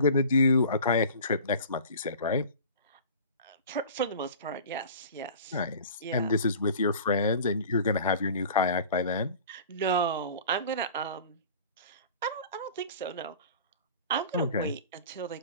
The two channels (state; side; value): inverted; both; correlation -0.41